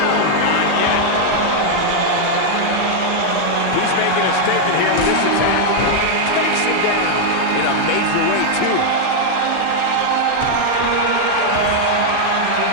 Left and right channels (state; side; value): different; both; correlation 0.00